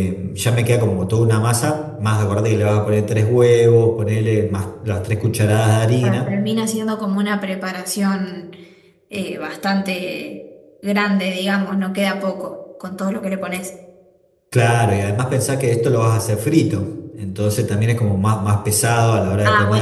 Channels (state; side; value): identical; both; correlation 1.00